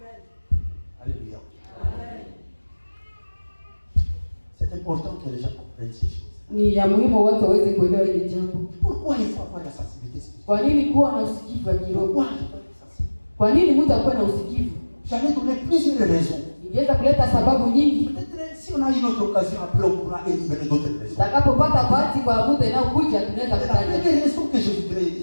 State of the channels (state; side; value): inverted; both; correlation -1.00